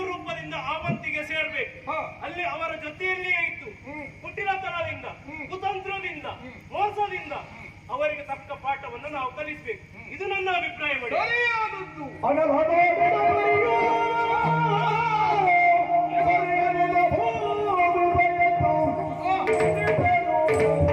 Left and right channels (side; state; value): both; identical; correlation 1.00